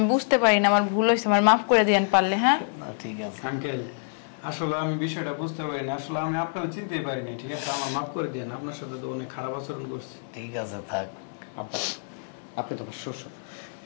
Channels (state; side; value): silent; right; digital silence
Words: বুঝতে পারি না, আমার ভুল হয়েছে, আমার মাফ করে দিয়েন পারলে। হ্যাঁ না ঠিক আছে। আঙ্কেল আসলে আমি বিষয়টা বুঝতে পারি না, আসলে আমি আপনাকে চিনতেই পারি না, ঠিক আছে? আমার মাফ করে দেন, আপনার সাথে তো অনেক খারাপ আচরণ করছি। ঠিক আছে থাক। আব্বা, আপনি তো আমার শ্বশুর,